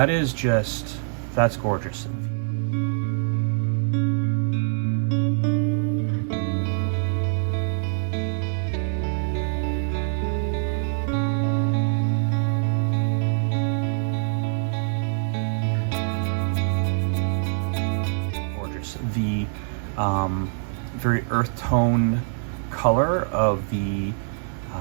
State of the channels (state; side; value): silent; left; 58 dB below the other